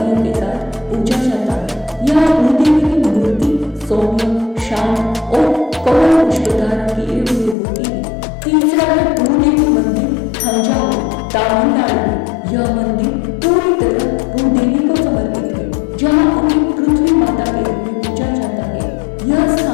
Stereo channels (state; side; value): drops out; right; at 7.6 s